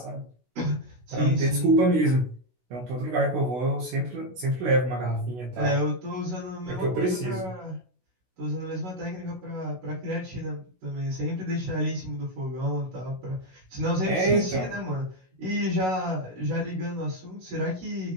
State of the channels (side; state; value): left; late; 16 ms